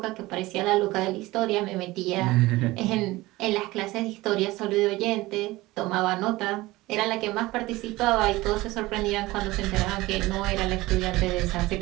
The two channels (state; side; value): quieter; left; 19.4 dB